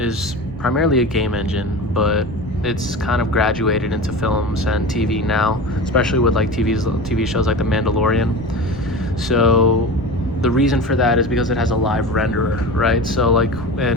primarily a game engine, but it's kind of graduated into films and TV now, especially with like TV shows like The Mandalorian. So the reason for that is because it has a live renderer, right? So like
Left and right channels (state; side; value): noise; right; rumble, 14 dB below the sound